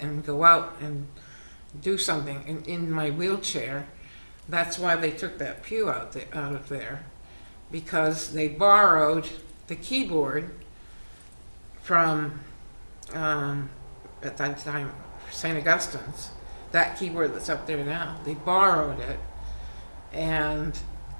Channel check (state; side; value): inverted; both; correlation -1.00